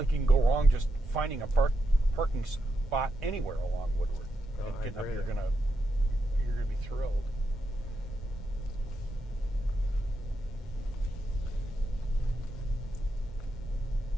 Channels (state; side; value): normal; both; correlation 0.84